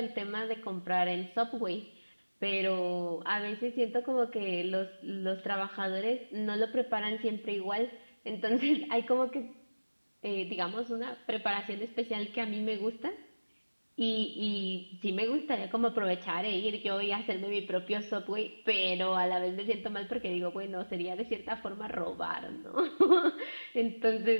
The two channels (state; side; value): inverted; both; correlation -1.00